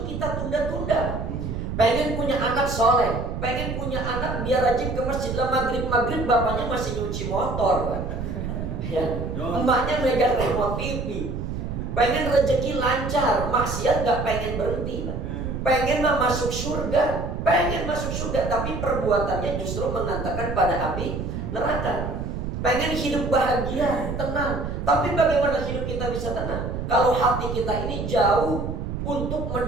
kita tunda-tunda. Pengen punya anak soleh, pengen punya anak biar rajin ke masjid, lah maghrib bapaknya masih nyuci motor, ya, emaknya megang remote TV. Pengen rezeki lancar, maksiat gak pengen berhenti, pengen masuk surga. Pengen masuk surga, tapi perbuatannya justru mengantarkan pada api neraka. Pengen hidup bahagia, tenang, tapi bagaimana hidup kita bisa tenang kalau hati kita ini jauh untuk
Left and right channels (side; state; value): right; noise; rumble, 4 dB below the sound